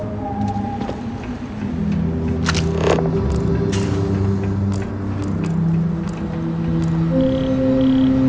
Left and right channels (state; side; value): identical; both; correlation 1.00